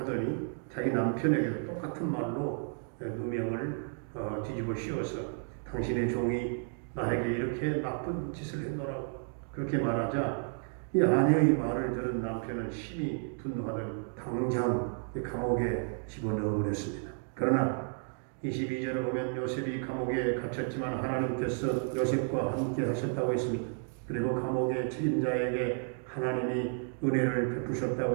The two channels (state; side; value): silent; left; 56 dB below the other